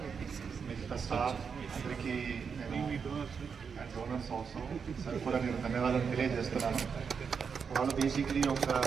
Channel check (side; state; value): left; quieter; 6.2 dB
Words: మిగతా స్టాఫ్ అందరికీ నేను అండ్ డోనర్స్ ఆల్సో సార్ కూడా నేను ధన్యవాదాలు తెలియజేస్తున్నాను. వాళ్ళు బేసిక్లీ ఒక